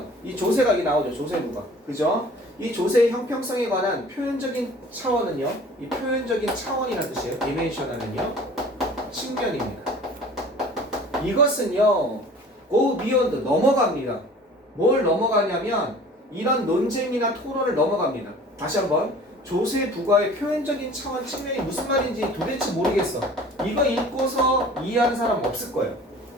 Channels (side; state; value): both; normal; correlation 0.46